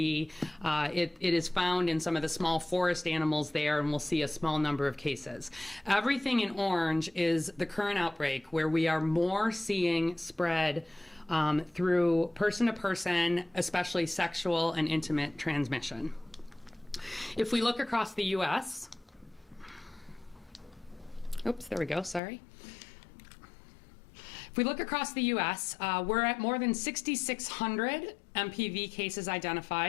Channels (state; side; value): drops out; right; at 22.2 s